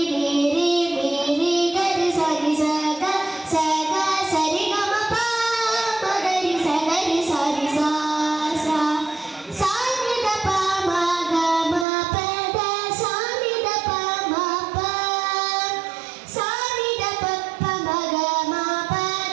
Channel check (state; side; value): drops out; left; at 11.9 s